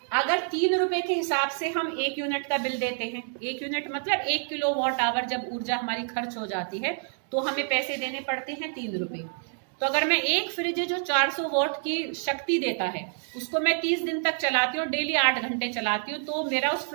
अगर 3 रुपए के हिसाब से हम 1 यूनिट का बिल देते हैं, 1 यूनिट मतलब 1 किलोवाट आवर जब ऊर्जा हमारी खर्च हो जाती है तो हमें पैसे देने पड़ते हैं 3 रुपए। तो अगर मैं एक फ्रिज जो 400 वॉट की शक्ति देता है उसको मैं 30 दिन तक चलाती हूँ, डेली 8 घंटे चलाती हूँ, तो मेरा उस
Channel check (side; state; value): left; silent; 59 dB below the other